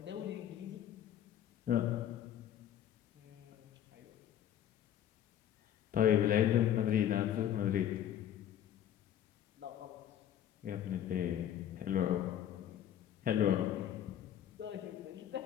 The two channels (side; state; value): right; quieter; 10.6 dB